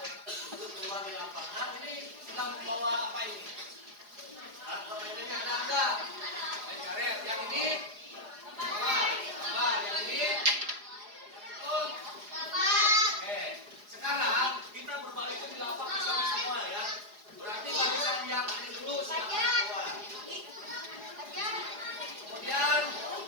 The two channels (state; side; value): late; left; 4.8 ms